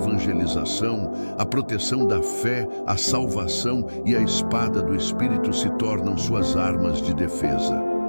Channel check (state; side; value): inverted; both; correlation -1.00